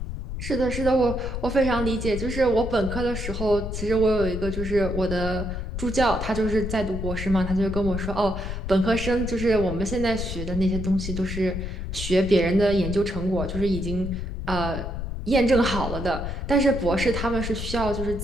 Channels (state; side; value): noise; left; rumble, 5 dB below the sound